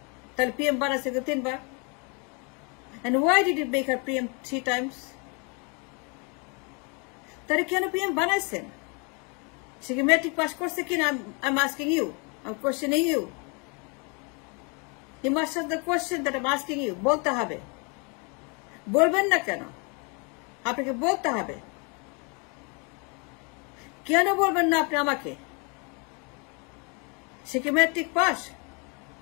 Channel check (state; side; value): quieter; right; 33.2 dB